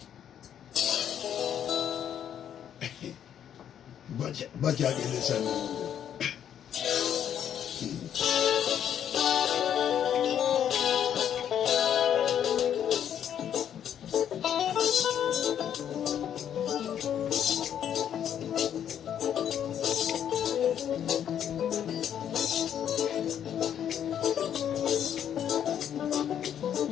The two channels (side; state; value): right; quieter; 9.5 dB